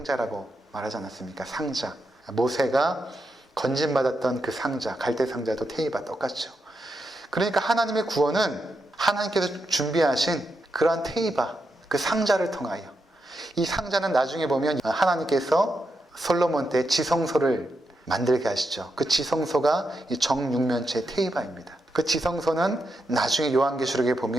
말하지 않았습니까? 상자. 모세가 건진받았던 그 상자, 갈대 상자도 테이바 똑같죠. 그러니까 하나님의 구원은 하나님께서 준비하신 그러한 테이바, 그 상자를 통하여, 이 상자는 나중에 보면 하나님께서 솔로몬 때 지성소를 만들게 하시죠. 그 지성소가 이 정육면체 테이바입니다. 그 지성소는 나중에 요한계시록에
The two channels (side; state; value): both; normal; correlation 0.84